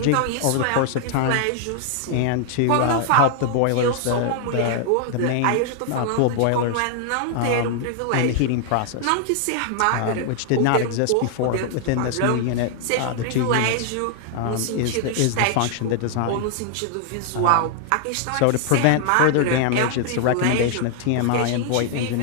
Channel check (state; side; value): different; both; correlation 0.00